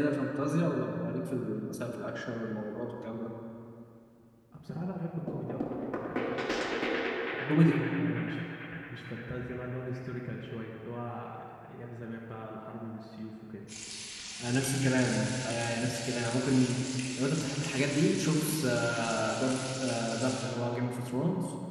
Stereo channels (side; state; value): both; identical; correlation 1.00